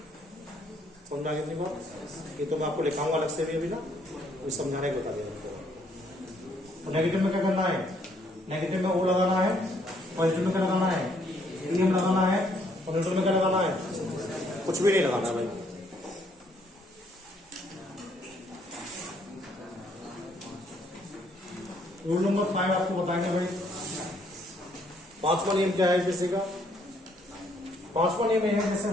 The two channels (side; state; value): both; normal; correlation 0.68